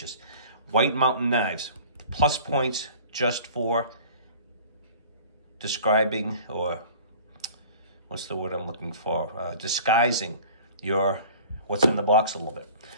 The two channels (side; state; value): both; inverted; correlation -0.45